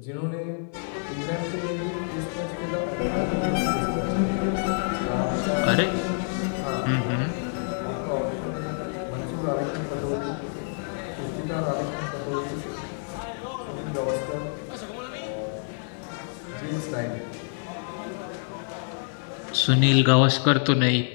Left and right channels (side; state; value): right; silent; digital silence